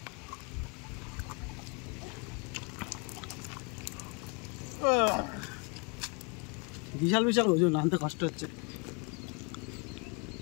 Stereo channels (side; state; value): right; quieter; 34.4 dB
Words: বিশাল বিশাল ওজন আনতে কষ্ট হচ্ছে